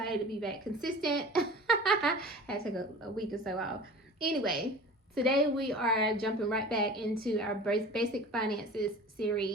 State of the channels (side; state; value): both; normal; correlation 0.39